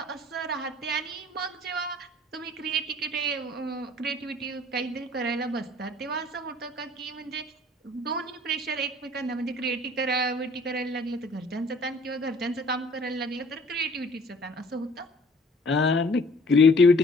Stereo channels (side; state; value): both; normal; correlation 0.53